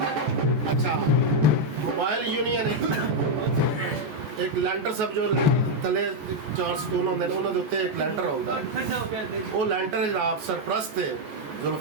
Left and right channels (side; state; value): left; late; 14 ms